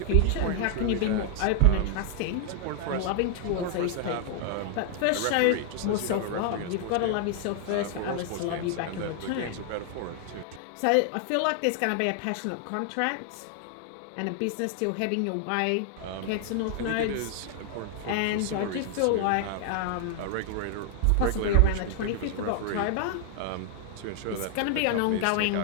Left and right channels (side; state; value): both; different; correlation 0.00